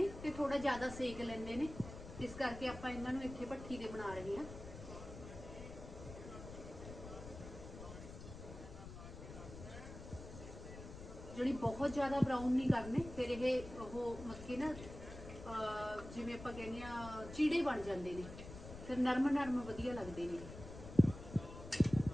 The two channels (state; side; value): noise; left; rumble, 12 dB below the sound